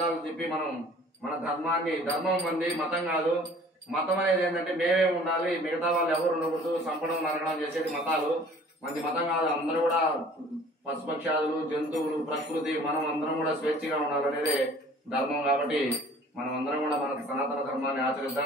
చెప్పి మనం మన ధర్మాన్ని, ధర్మం మంది మతం కాదు. మతం అనేది ఏంటంటే మేమే ఉండాలి, మిగతా వాళ్ళు ఎవరు ఉండకూడదు, చంపడం నరకడం చేసేది మతాలు. మంది మతం కాదు. అందరూ కూడా పశుపక్షాదులు, జంతువులు, ప్రకృతి, మనం అందరం కూడా స్వేచ్ఛగా ఉండాలనేదే ధర్మం. కాబట్టి మనం అందరం కూడా మన సనాతన ధర్మాన్ని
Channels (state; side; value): normal; both; correlation 0.51